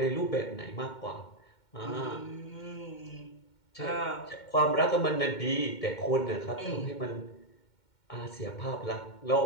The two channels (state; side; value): late; right; 2.2 ms